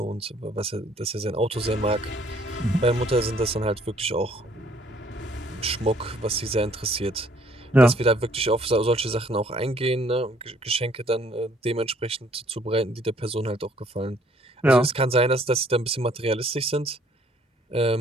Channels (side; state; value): both; normal; correlation 0.62